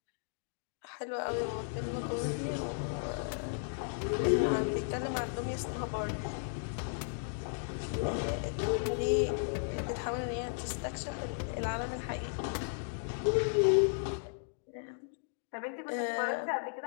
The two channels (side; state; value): right; silent; digital silence